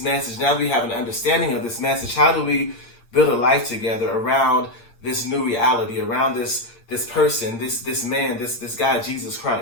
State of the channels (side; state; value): right; late; 8.7 ms